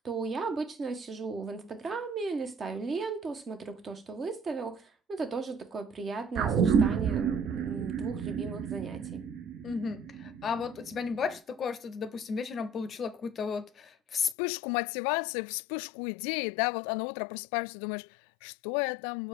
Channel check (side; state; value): right; drops out; at 14.4 s